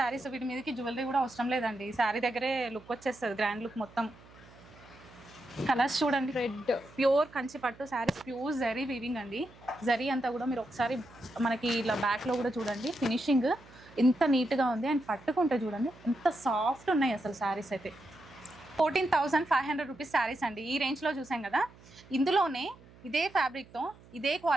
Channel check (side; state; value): right; noise; hum, 23 dB below the sound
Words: వీటి మీదకి జ్యువెలరీ కూడా అవసరం లేదండి, శారీ దగ్గరే లుక్ వచ్చేస్తుంది, గ్రాండ్ లుక్ మొత్తం. కలర్స్ చూడండి, రెడ్ ప్యూర్ కంచి పట్టు శారీస్, ప్యూర్ జరీ వీవింగ్ అండి. జరీ అంతా కూడా మీరు ఒకసారి మనకి ఇలా బ్యాక్లో కూడా చూడండి, ఫినిషింగ్ ఎంత నీట్గా ఉంది. అండ్ పట్టుకుంటే చూడండి ఎంత సాఫ్ట్ ఉన్నాయి అసలు శారీస్ అయితే. 14,500 రూపీస్ శారీస్ అండి. ఈ రేంజ్లో చూసాం కదా. ఇందులోనే ఇదే ఫ్యాబ్రిక్తో ఇదే